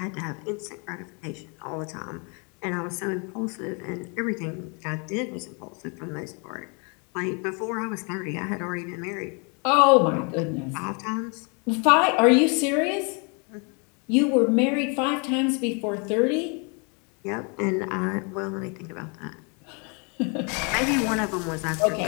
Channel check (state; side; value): quieter; right; 34.6 dB